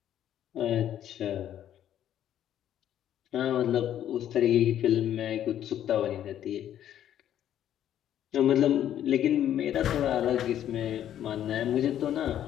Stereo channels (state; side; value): quieter; right; 10.9 dB